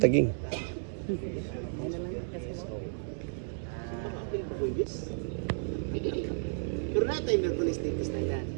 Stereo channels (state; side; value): silent; left; 56 dB below the other